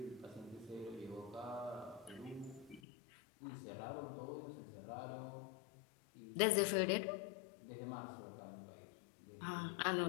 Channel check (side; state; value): right; drops out; at 2.8 s